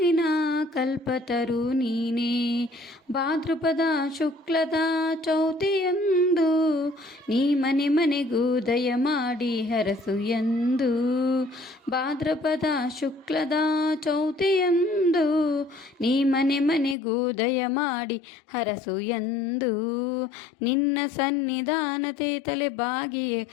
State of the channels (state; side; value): drops out; right; at 16.9 s